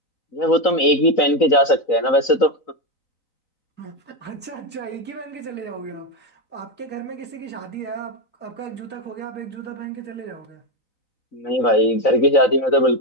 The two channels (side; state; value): right; late; 4.0 ms